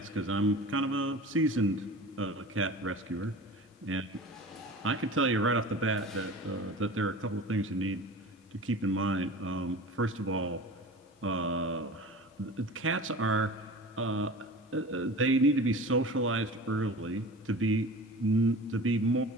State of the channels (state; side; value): normal; both; correlation 0.36